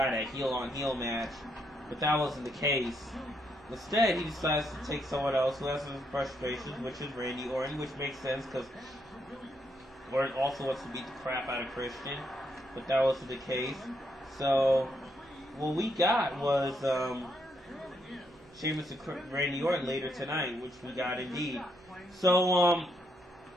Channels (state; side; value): normal; both; correlation 0.76